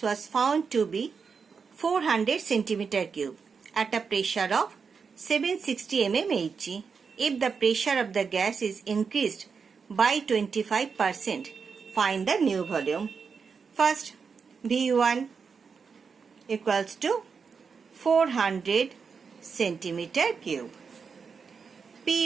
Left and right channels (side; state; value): left; quieter; 5.6 dB